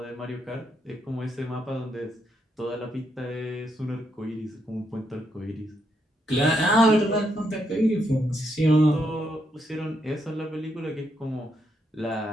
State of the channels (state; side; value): normal; both; correlation 0.78